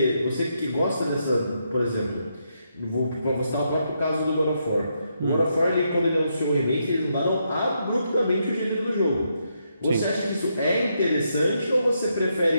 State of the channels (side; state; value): both; inverted; correlation -0.80